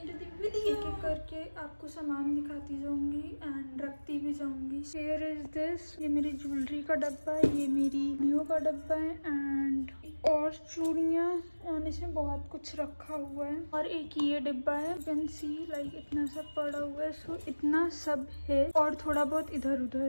the video. एक एक करके आपको सामान दिखाती जाऊंगी एंड रखती भी जाऊंगी. Here is this. ये मेरी ज्वेलरी का डब्बा है, ये मेरी नियो का डब्बा है एंड और चूड़ियाँ और इसमें बहुत कुछ रखा हुआ है. और एक ये डिब्बा है, you can see like इतना सब पड़ा हुआ है. So इतना सब है और थोड़ा बहुत इधर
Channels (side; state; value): both; inverted; correlation -1.00